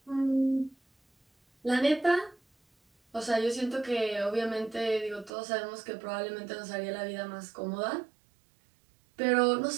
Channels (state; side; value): drops out; left; at 5.3 s